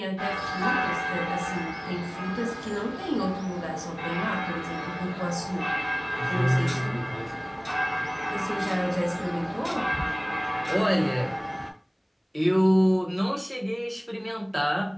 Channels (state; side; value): identical; both; correlation 1.00